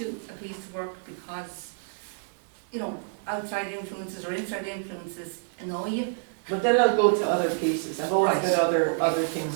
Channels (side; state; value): left; silent; digital silence